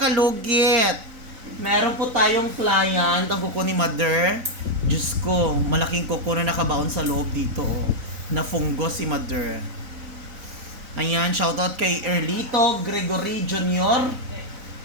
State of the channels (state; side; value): late; left; 4.0 ms